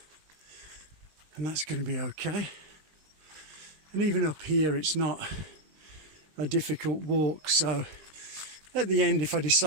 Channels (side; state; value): left; late; 20 ms